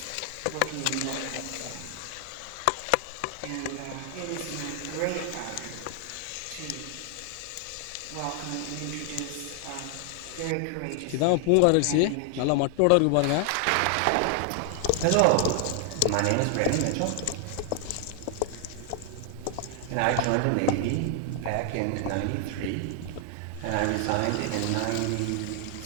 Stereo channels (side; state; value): both; different; correlation 0.00